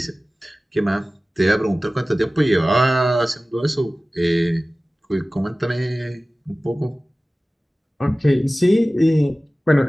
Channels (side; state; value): both; normal; correlation 0.97